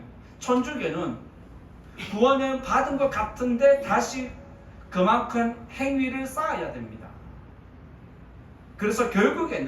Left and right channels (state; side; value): identical; both; correlation 1.00